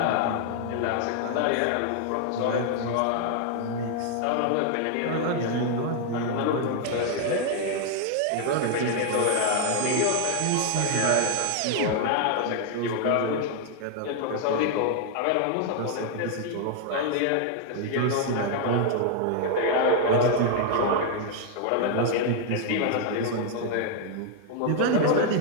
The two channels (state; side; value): different; both; correlation 0.00